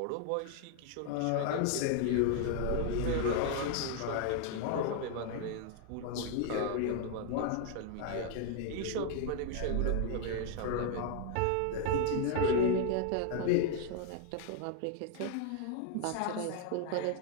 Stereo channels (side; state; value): both; different; correlation 0.00